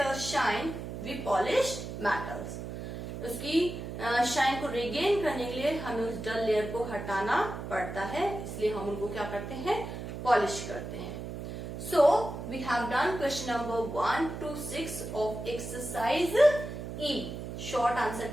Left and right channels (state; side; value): noise; right; hum, 7 dB below the sound